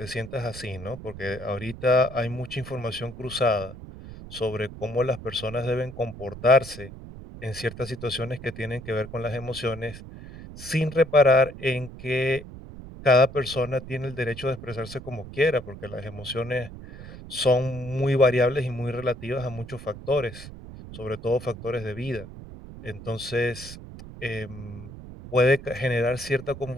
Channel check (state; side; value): noise; right; rumble, 14 dB below the sound